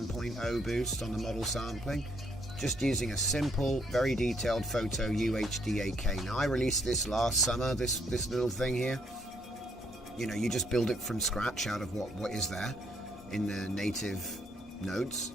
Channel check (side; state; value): both; normal; correlation 0.71